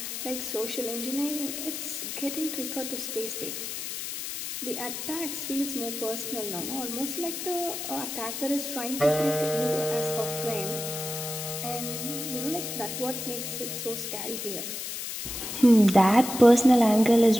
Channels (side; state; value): left; noise; hiss, 6 dB below the sound